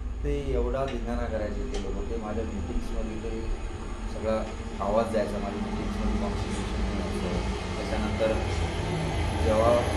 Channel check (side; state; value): both; identical; correlation 1.00